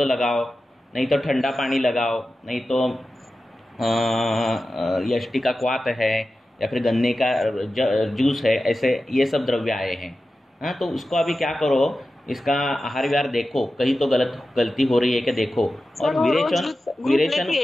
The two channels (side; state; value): both; normal; correlation 0.93